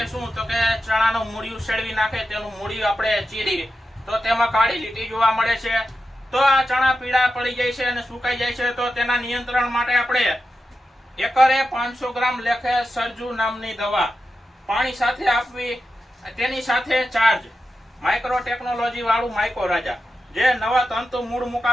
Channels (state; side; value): normal; both; correlation 0.90